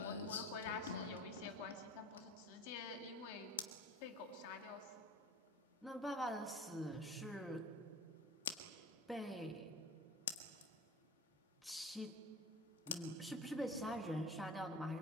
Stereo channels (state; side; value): normal; both; correlation 0.35